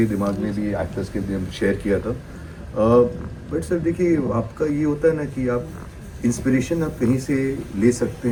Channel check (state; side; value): identical; both; correlation 1.00